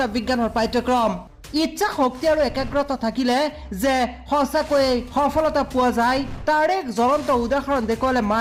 বিজ্ঞানৰ পাঠ্যক্ৰম ইচ্ছা শক্তি আৰু একাগ্ৰতা থাকিলে যে সঁচাকৈয়ে সফলতা পোৱা যায় তাৰ এক জ্বলন্ত উদাহৰণ দেখুৱালে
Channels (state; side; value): identical; both; correlation 1.00